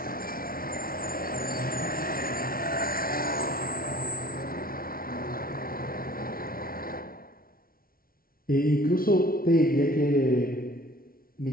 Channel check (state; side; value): late; right; 0.43 ms